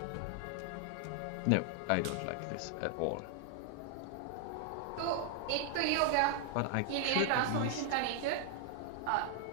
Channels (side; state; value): both; different; correlation 0.00